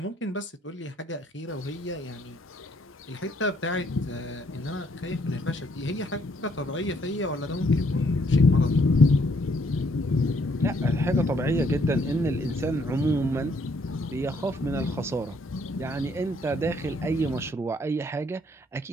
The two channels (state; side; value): normal; both; correlation 0.68